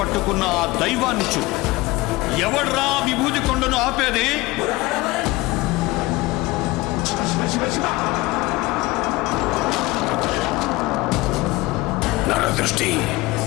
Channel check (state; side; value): quieter; right; 20.5 dB